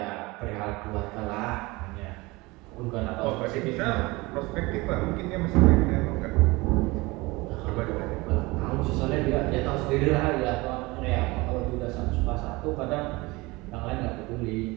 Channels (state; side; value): quieter; left; 22.9 dB